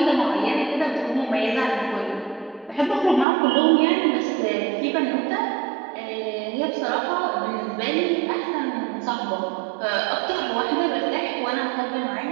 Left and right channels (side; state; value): left; drops out; at 3.2 s